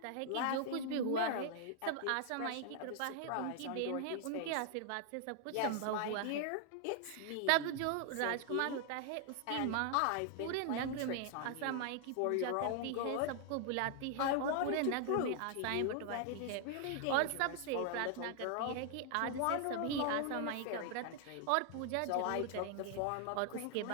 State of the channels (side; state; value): both; different; correlation 0.00